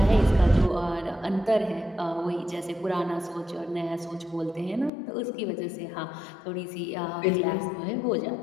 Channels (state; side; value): drops out; right; at 4.9 s